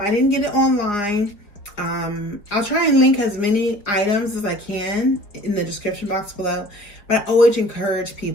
didn't get it online. I'll try and link as many items as I can in the description box below. But I always encourage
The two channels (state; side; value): late; right; 4.6 ms